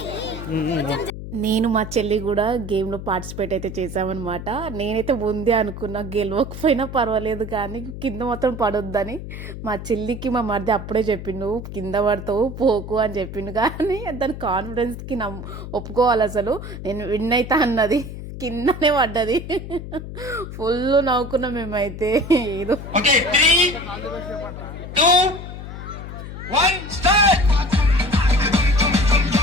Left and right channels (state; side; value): noise; left; hum, 10 dB below the sound